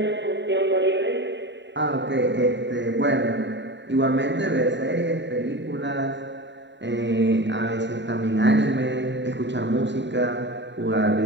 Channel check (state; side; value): late; left; 0.52 ms